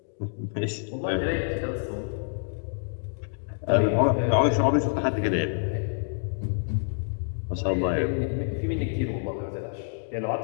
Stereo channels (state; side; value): silent; right; digital silence